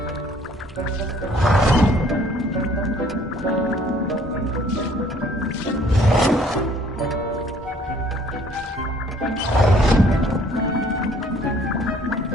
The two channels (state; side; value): normal; both; correlation 0.58